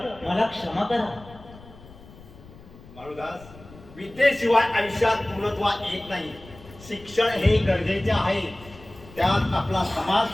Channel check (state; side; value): noise; left; rumble, 20 dB below the sound